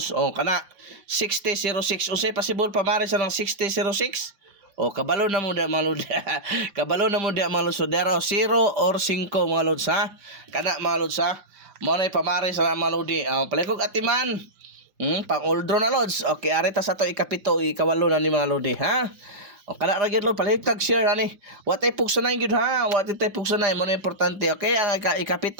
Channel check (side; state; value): left; late; 5.1 ms